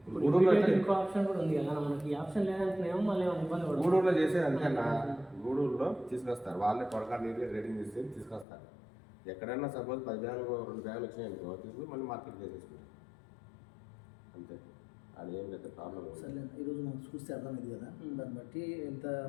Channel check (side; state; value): right; drops out; at 8.5 s